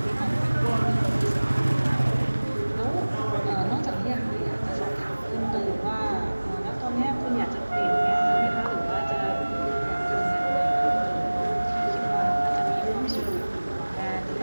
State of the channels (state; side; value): inverted; both; correlation -1.00